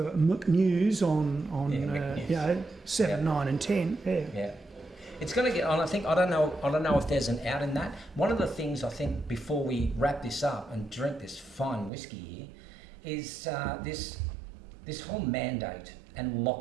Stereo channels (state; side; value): drops out; left; at 11.9 s